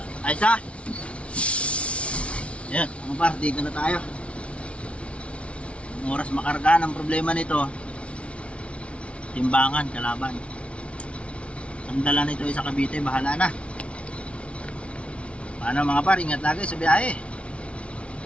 Ayos na. Yan, mga par, dito na tayo. Ang oras makarga. Ang problema nito, timbangan, kalaban. Ang dala nito ay sa Cavite, bahala na. Paano mga par, ingat lagi sa biyahe.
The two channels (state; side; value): late; right; 0.061 ms